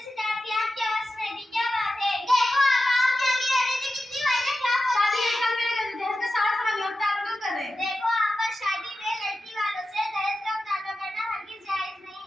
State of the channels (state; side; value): normal; both; correlation 0.92